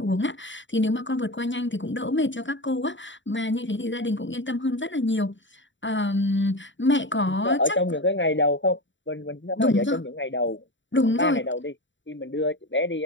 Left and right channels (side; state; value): right; late; 0.54 ms